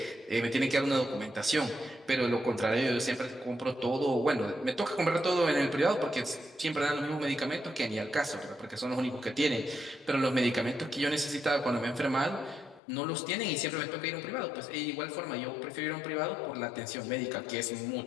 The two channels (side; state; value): right; drops out; at 12.8 s